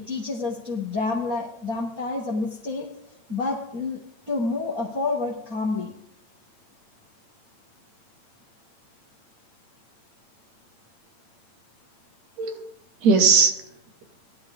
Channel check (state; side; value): late; left; 8.7 ms